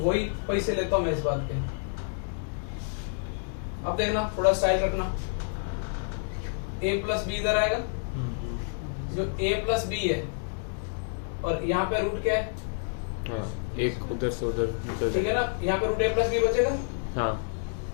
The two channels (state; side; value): silent; right; digital silence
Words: वही पैसे लेता हूं मैं इस बात के। अब देखना थोड़ा स्टाइल रखना, a प्लस बी इधर आएगा, जो a प्लस बी है और यहाँ पे रूट क्या है, हाँ, एक उधर से उधर निकल ठीक है ना, यहाँ पे रूट a प्लस बी बचेगा। हाँ